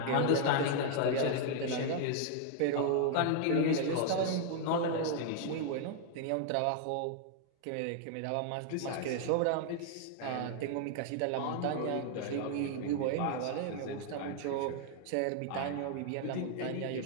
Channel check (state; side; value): different; both; correlation 0.00